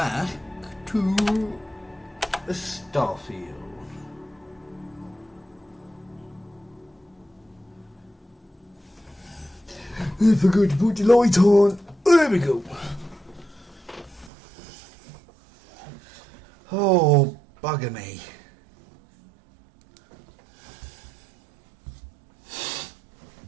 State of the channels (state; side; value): drops out; left; at 14.3 s